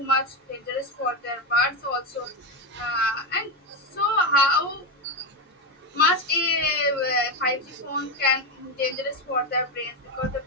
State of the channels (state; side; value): normal; both; correlation 0.11